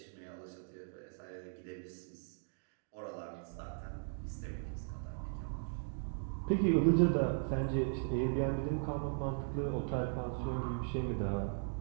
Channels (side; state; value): left; silent; digital silence